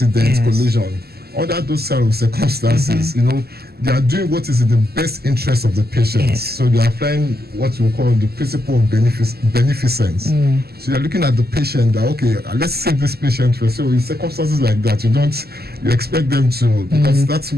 collision. Under those kind of circumstances, they are doing what is in the best interest of the patient. So they are applying what we call the principle of beneficence. So you're looking at the patient that, okay, let's save this patient first. So in circumstances like that, you expect them to, because that's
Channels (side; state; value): left; late; 0.46 ms